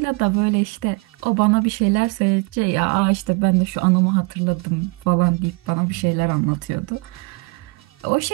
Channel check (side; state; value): left; quieter; 28.2 dB